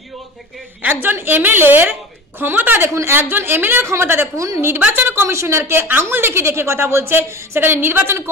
একজন এমএলএর ক্ষমতা দেখুন, নির্বাচন কমিশনারকে আঙুল দেখে দেখে কথা বলছে, সেখানে নির্বাচন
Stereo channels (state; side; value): normal; both; correlation 0.34